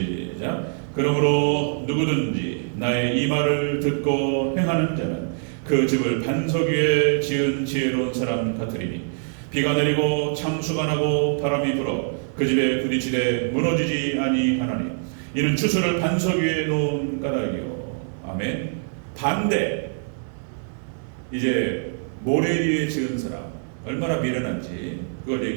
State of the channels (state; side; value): silent; left; digital silence